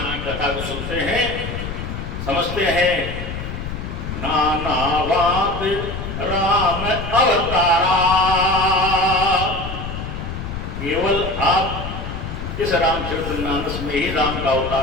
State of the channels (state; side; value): noise; left; rumble, 6 dB below the sound